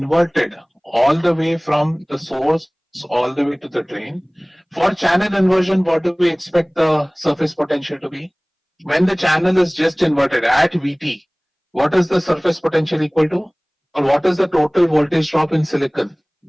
all the way from the source all the way to the drain, for channel inversion, what do we expect the surface potential to be? When the channel is just inverted at VT, what is the surface potential equal to? Or what is the total voltage drop in silicon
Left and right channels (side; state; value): both; identical; correlation 1.00